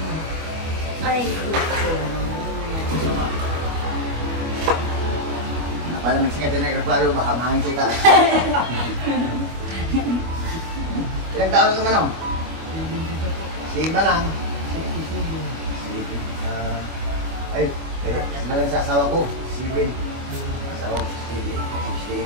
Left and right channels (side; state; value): left; late; 25 ms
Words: Ay, Para magsikat na nagkaklaro, baka mahangin sa itaas. Ilang taon ka man o? Sigma lang. Ay, sinalang sa asawa ko, Sibin. Asawa ko, Sibin.